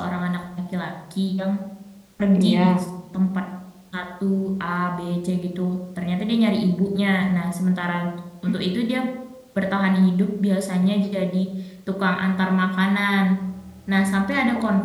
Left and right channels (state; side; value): identical; both; correlation 1.00